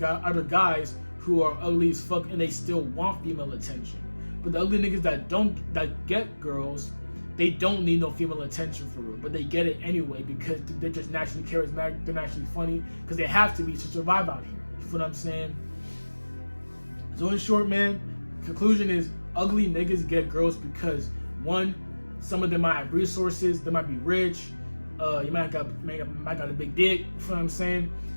guys who are ugly as fuck and they still want female attention. But the ugly niggas that get girls, they don't need no female attention for real, but they get it anyway because they're just naturally charismatic, they're naturally funny, because they have to be to survive out here. You feel what I'm saying? So in short, man, conclusion is ugly niggas get girls because, one, some of them might have resources, they might be rich, you might got a big dick, you feel what I'm saying?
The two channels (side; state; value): both; inverted; correlation -1.00